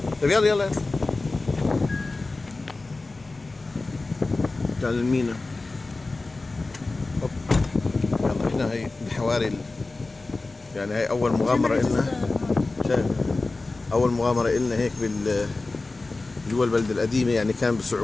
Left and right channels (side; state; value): right; quieter; 3.4 dB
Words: طيب يلا يلا. تعال المينا. هوب. يلا هنا هي الحواري يعني هي أول مغامرة إلنا. شايف؟ أول مغامرة إلنا هيك جوا البلد القديمة، يعني كان